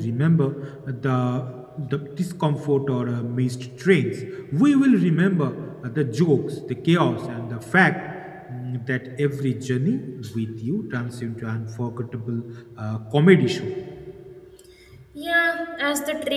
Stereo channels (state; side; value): identical; both; correlation 1.00